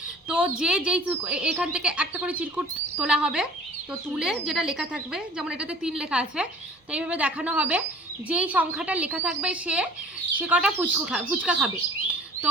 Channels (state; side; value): normal; both; correlation 0.47